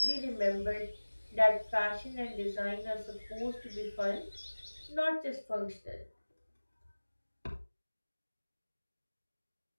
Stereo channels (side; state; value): both; inverted; correlation -1.00